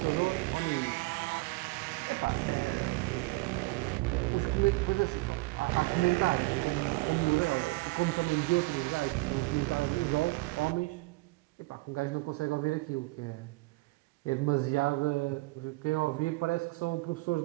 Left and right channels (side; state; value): left; quieter; 23.2 dB